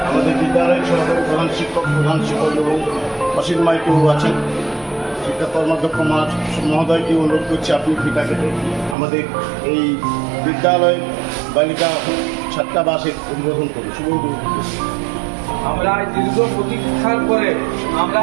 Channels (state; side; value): drops out; left; at 9.0 s